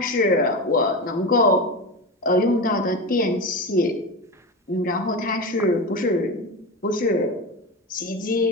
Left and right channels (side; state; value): both; normal; correlation 0.22